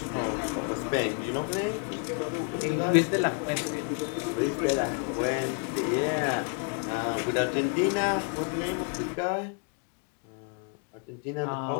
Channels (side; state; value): right; quieter; 35.7 dB